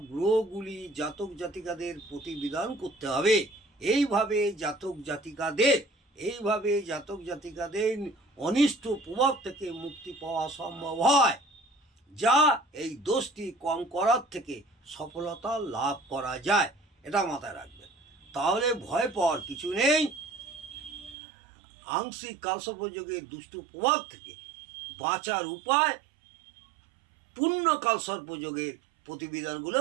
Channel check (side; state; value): left; drops out; at 21.2 s